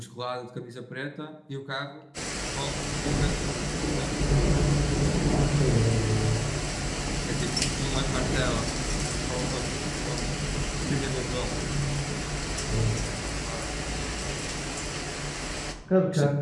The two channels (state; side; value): identical; both; correlation 1.00